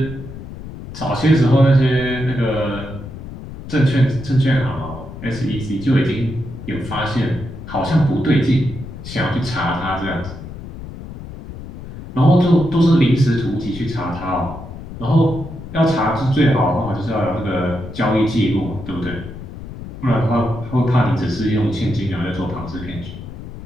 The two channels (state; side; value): noise; left; rumble, 12 dB below the sound